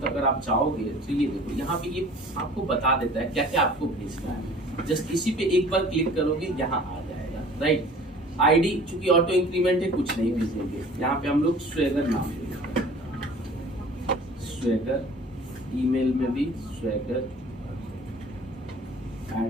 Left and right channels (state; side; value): normal; both; correlation 0.47